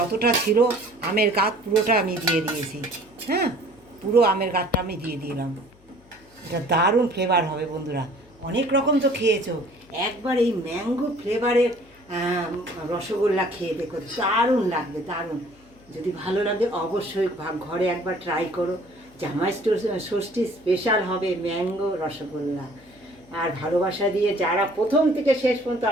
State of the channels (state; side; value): noise; left; hum, 29 dB below the sound